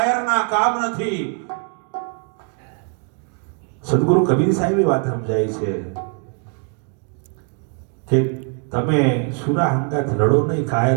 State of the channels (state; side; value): quieter; left; 39.9 dB